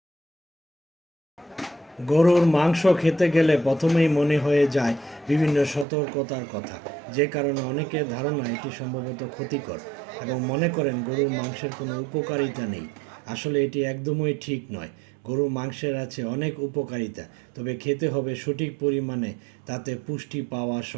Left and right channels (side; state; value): left; drops out; at 5.9 s